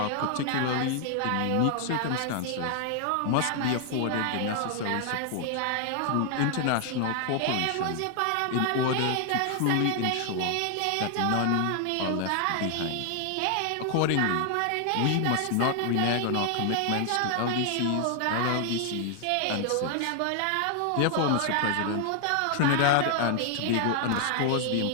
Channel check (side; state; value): both; different; correlation 0.00